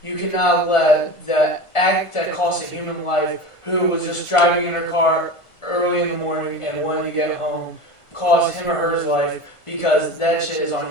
you cannot let the act that cost a human life, who was just driving in her car early in the morning and wanted to get home, cost him or her life, because that shit is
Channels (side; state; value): right; late; 1.5 ms